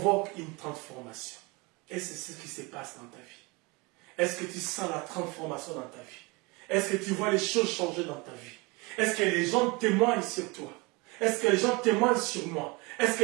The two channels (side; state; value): left; quieter; 26.4 dB